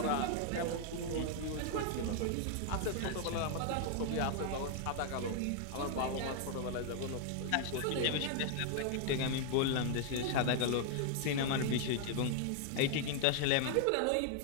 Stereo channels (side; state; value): both; different; correlation 0.00